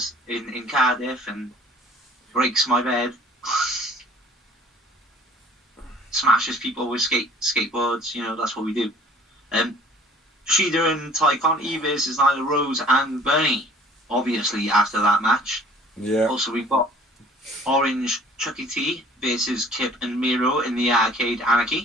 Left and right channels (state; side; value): normal; both; correlation 0.51